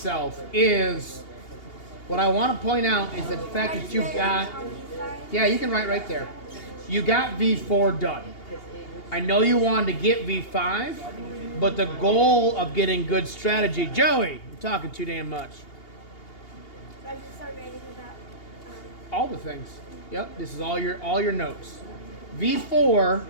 is what I want to point out is the fact that you've got, yeah, you can write right there. You got V4 done. I know you wanted to get V5, but the goal of getting good strategy, Joey, you're talking too damn much. So I just started writing about All the things. Yep, this is all your notes. V4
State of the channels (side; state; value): right; late; 2.8 ms